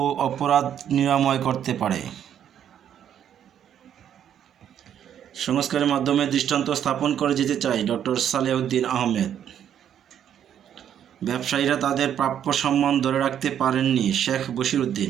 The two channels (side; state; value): left; quieter; 9.6 dB